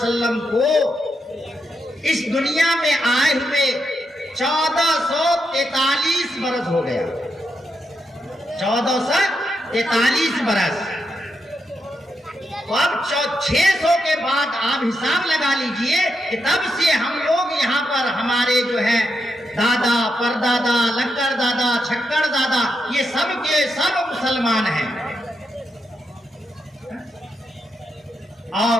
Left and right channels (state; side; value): normal; both; correlation 0.83